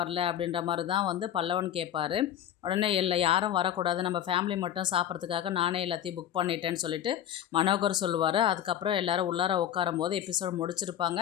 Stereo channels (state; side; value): quieter; right; 10.7 dB